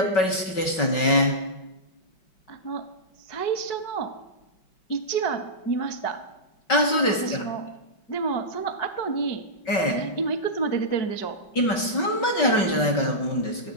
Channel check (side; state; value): right; late; 5.3 ms